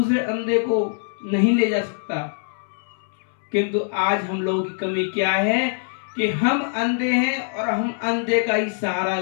अंधे को नहीं ले जा सकता। किंतु आज हम लोगों की कमी क्या है कि हम अंधे हैं और हम अंधे का ही सहारा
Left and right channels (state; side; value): silent; right; 63 dB below the other